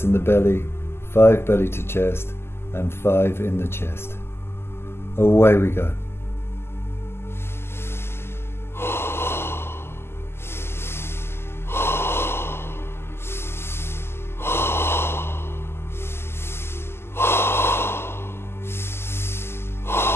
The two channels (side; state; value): right; late; 0.12 ms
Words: in the belly, 5 belly to chest, and 5 in the chest. Away we go.